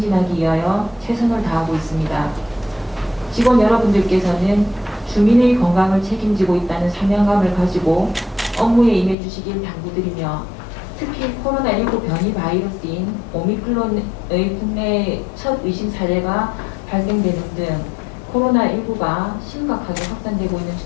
위하여 최선을 다하고 있습니다. 직원 여러분들께서는 주민의 건강을 책임지고 있다는 사명감을 가지고 업무에 임해 주시길 당부드리며 특히 코로나19 변이 바이러스인 오미크론의 국내 첫 의심 사례가 발생되는 등 코로나19가 심각하게 확산되고 있는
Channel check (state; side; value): drops out; right; at 9.2 s